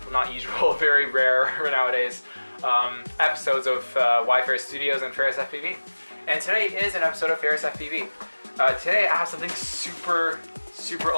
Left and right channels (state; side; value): inverted; both; correlation -1.00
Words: not usual, very rare nowadays, episodes of Y Studios and Ferris FPV. And today is an episode of Ferris FPV. Today I have something super